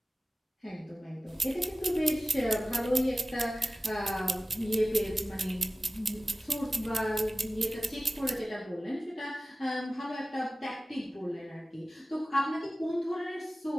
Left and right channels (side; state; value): both; normal; correlation 0.96